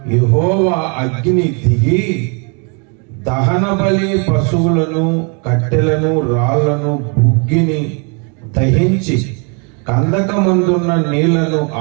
యెహోవా అగ్ని దిగి దహన బలి పశువులను, కట్టెలను, రాళ్లను, బుగ్గిని దహించి కందకమందున్న నీళ్లను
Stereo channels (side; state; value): left; quieter; 35.8 dB